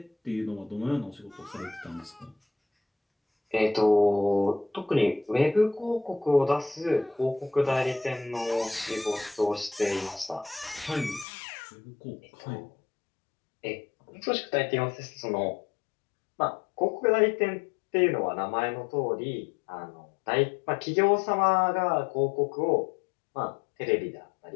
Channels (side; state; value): right; drops out; at 11.2 s